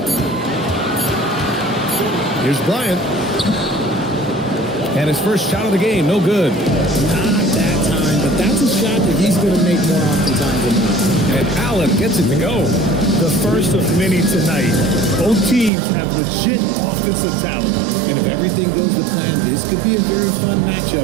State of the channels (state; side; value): drops out; left; at 15.7 s